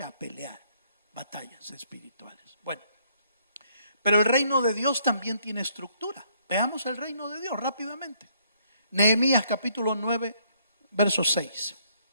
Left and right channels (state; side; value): inverted; both; correlation -0.68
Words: a pelear batallas espirituales. Bueno, pero el reino de Dios también tiene estructura. Veamos el reino de Dios rápidamente. Nehemías capítulo 9, verso 6.